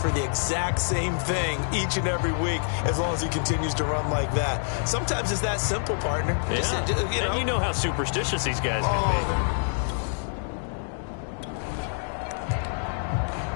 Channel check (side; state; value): right; silent; digital silence